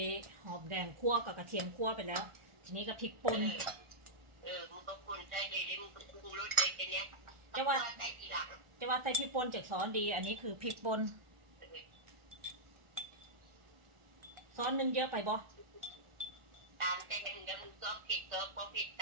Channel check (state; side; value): late; left; 1.4 ms